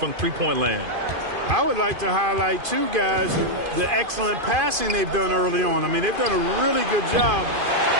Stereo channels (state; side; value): late; left; 2.5 ms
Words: three-point land. I would like to highlight, too, guys, the excellent passing they've done early on. I mean, they've done a really good job